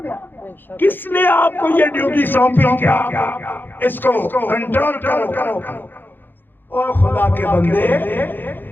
کس نے آپ کو یہ ڈیوٹی سونپی؟ کیا اس کو کنٹرول کرو. اور خدا کے بندے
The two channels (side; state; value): right; late; 0.094 ms